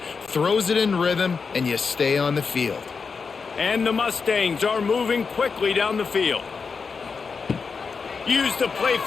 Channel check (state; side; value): quieter; right; 5.2 dB